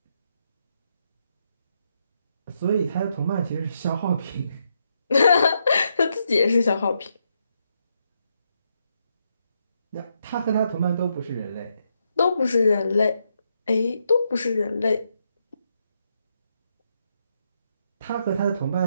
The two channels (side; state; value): both; inverted; correlation -0.80